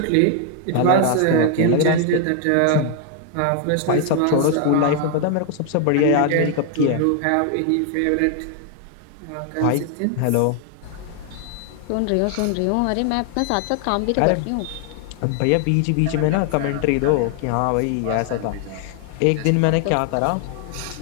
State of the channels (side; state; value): both; different; correlation 0.00